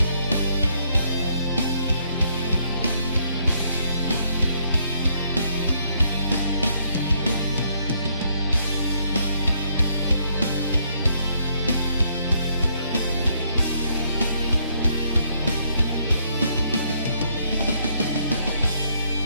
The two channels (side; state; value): both; inverted; correlation -0.71